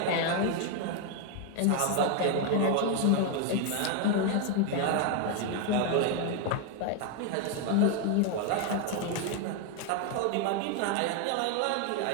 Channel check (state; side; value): different; both; correlation 0.01